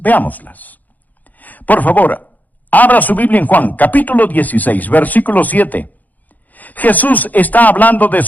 Por favor, abra su Biblia en Juan, capítulo 16, versículo 7. Jesús está hablando de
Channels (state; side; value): late; right; 0.082 ms